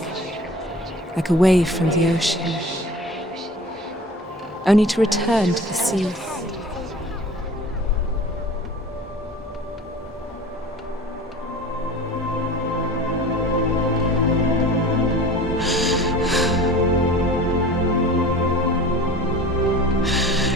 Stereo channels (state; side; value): normal; both; correlation 0.40